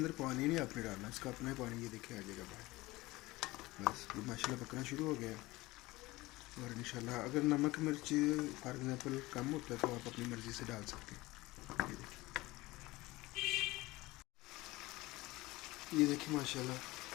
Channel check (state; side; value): quieter; right; 20.1 dB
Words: पानी नहीं आपने डालना, इसका अपना पानी ये देखिए आ जाएगा बाहर। बस ये माशाल्लाह पकना शुरू हो गया। और इंशाल्लाह अगर नमक मिर्च फॉर एग्जांपल कम होता है तो आप अपनी मर्ज़ी से डाल सकते हैं। ये देखिए माशाल्लाह